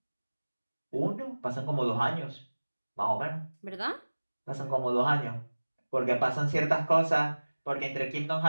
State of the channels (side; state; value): both; inverted; correlation -1.00